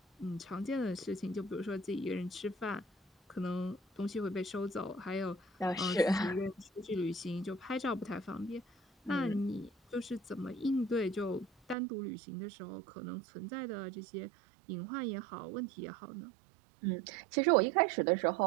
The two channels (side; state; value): left; drops out; at 11.8 s